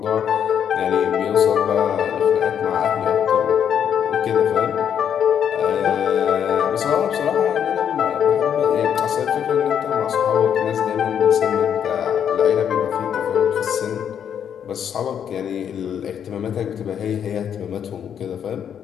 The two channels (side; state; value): right; quieter; 8.6 dB